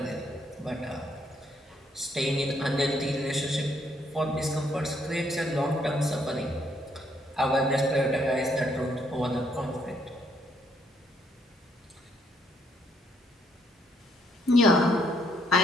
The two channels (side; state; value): both; normal; correlation 0.71